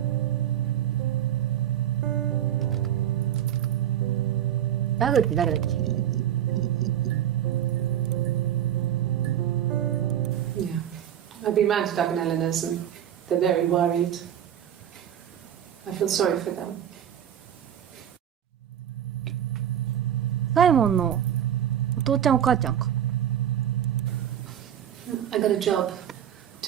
ダグって誰だっけ？ Yeah. I've been round to Doug and Eleanor's and they're very worried. I feel sorry for them. サイモンのお父ちゃんお母ちゃんか。I got a job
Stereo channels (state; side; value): quieter; left; 10.3 dB